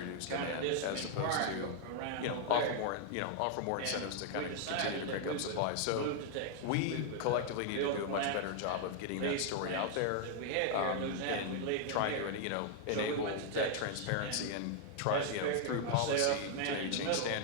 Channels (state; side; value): different; both; correlation 0.00